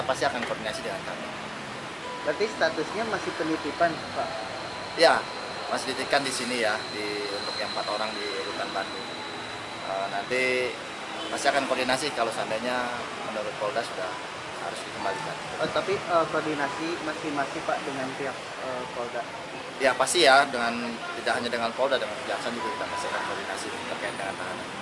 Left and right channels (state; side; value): identical; both; correlation 1.00